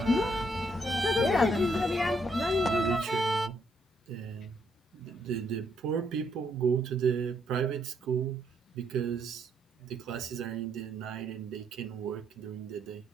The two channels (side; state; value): both; normal; correlation 0.73